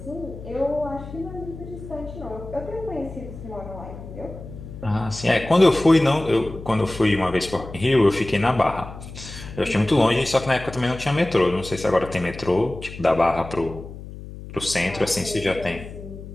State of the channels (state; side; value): noise; left; hum, 13 dB below the sound